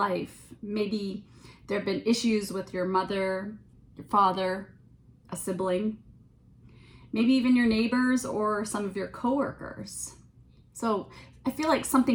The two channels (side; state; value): both; identical; correlation 1.00